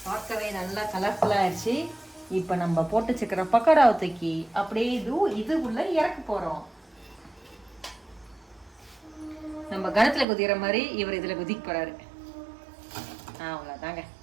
பார்க்கவே நல்லா கலர்ஃபுல்லாக ஆயிடுச்சு. இப்போ நம்ம போட்டு வச்சுக்கிற பக்கோடாவை தூக்கி அப்படியே இதுக்குள்ள இறக்க போகிறோம். நம்ம கணத்தில் குதிக்கிற மாதிரி இவர் இதில் குதிக்க போகிறாரு. அவ்வளோதாங்க.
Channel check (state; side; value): drops out; left; at 10.2 s